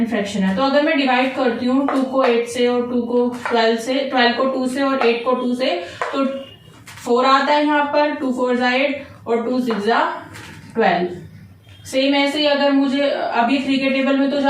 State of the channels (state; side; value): identical; both; correlation 1.00